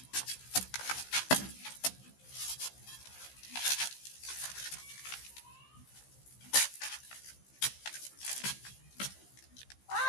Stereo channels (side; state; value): right; late; 15 ms